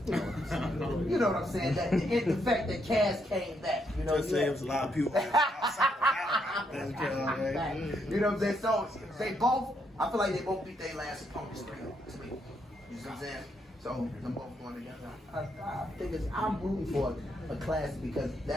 You know what I'm saying? That the fact that Cass came back. Just saying, there's a lot of people. You know what I'm saying? So they both, I feel like they both beat their last opponents 3-0 to me. You see what I'm saying? So So them both going together. I think I'm rooting for a classic because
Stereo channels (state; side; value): normal; both; correlation 0.76